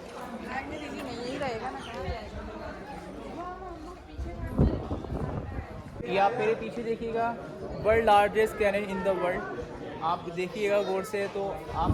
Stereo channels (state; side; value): identical; both; correlation 1.00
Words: ये आप मेरे पीछे देखिएगा, world largest cannon in the world. आप देखिएगा गौर से तो